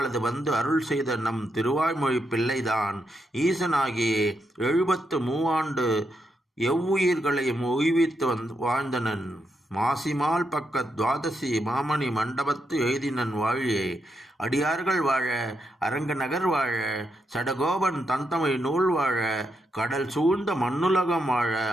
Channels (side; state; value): both; normal; correlation 0.82